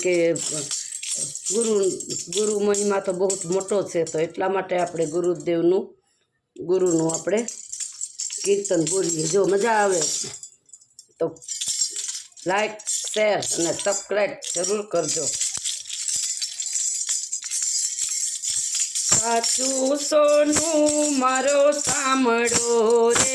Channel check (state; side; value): identical; both; correlation 1.00